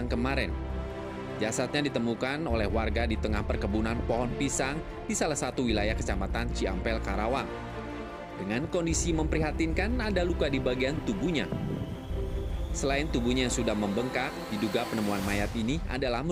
kemarin. Jasadnya ditemukan oleh warga di tengah perkebunan pohon pisang di salah satu wilayah Kecamatan Ciampel, Karawang. Dengan kondisi memprihatinkan, ada luka di bagian tubuhnya. Selain tubuhnya yang sudah membengkak, diduga penemuan mayat ini adalah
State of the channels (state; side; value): identical; both; correlation 1.00